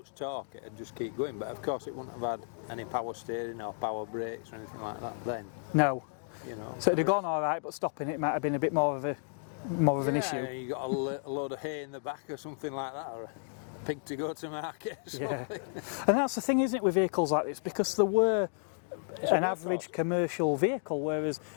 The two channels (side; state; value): right; silent; digital silence